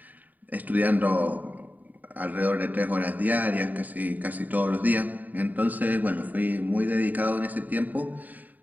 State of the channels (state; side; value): late; left; 0.082 ms